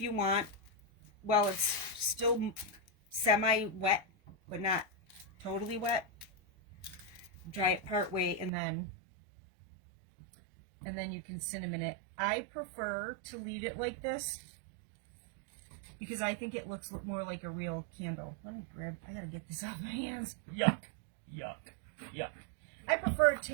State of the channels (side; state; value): left; drops out; at 8.5 s